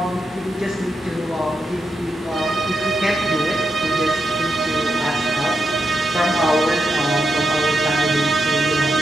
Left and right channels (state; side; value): normal; both; correlation 0.85